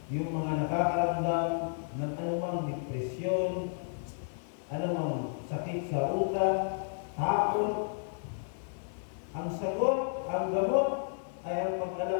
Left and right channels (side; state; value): right; silent; 56 dB below the other